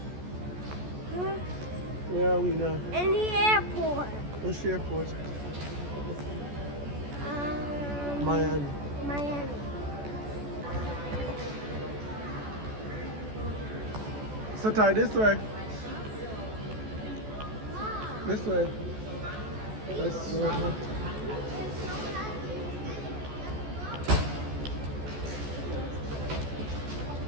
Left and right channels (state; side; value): late; left; 14 ms